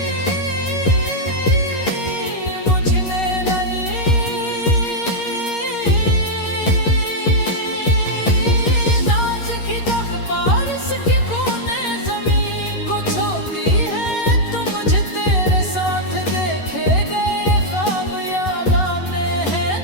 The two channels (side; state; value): right; late; 11 ms